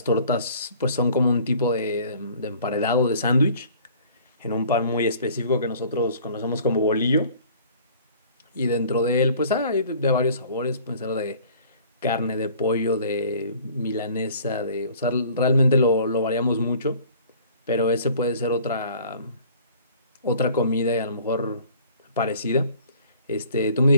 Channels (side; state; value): both; inverted; correlation -0.52